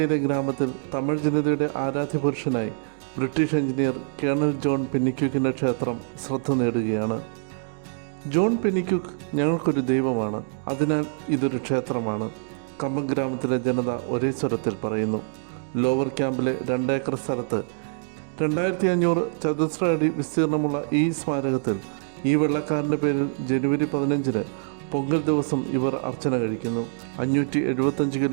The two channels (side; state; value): left; silent; digital silence